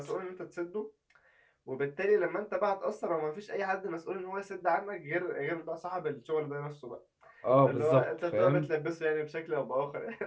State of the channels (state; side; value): identical; both; correlation 1.00